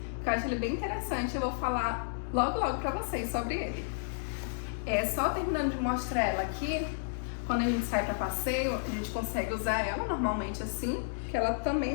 que eu acho ele bem interessante, eu vou falar logo pra vocês sobre ele. Só terminando de mostrar ela aqui, quando a gente sai para passeio, a gente consegue usar ela normalmente assim, que ela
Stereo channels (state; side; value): silent; right; digital silence